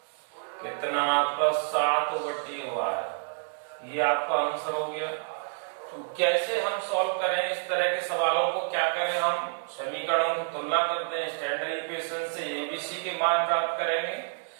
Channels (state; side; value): silent; left; digital silence